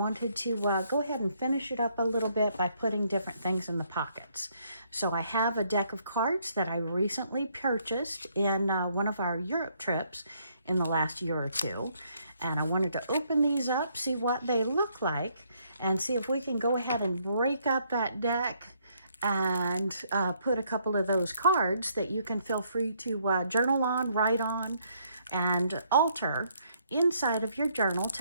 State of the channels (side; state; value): both; inverted; correlation -0.70